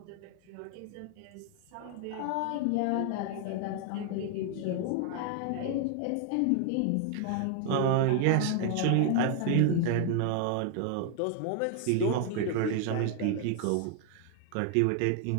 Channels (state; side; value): different; both; correlation 0.00